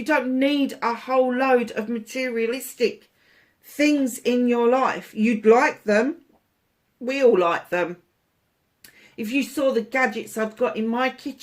don't need a whole load of materialistic things in your life. You'd like them. We all like them. If you saw the gadgets I've got in my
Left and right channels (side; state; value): both; identical; correlation 1.00